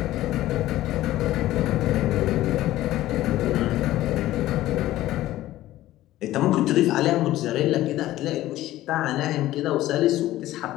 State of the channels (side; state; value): right; quieter; 15.2 dB